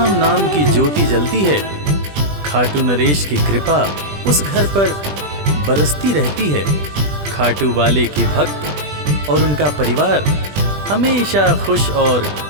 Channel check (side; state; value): left; late; 20 ms